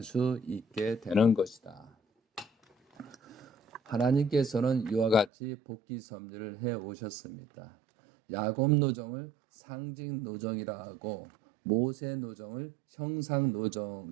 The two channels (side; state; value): left; drops out; at 5.3 s